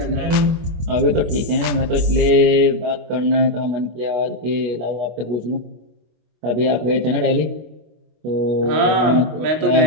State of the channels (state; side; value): late; left; 25 ms